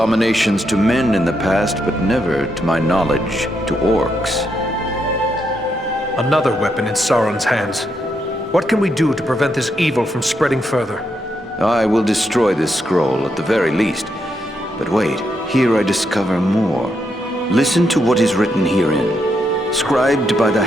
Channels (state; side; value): normal; both; correlation 0.80